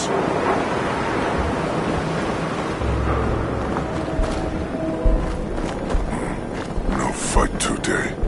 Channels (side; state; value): both; identical; correlation 1.00